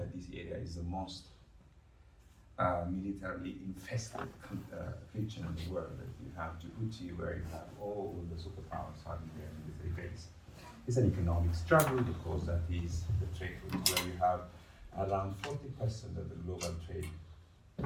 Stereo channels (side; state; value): both; identical; correlation 1.00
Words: this area is the most militarily infested region in the world. That you have Djibouti, where you have all the superpowers having their military base. It's an economic struggle because that is the trade route where you have around 40% of the global trade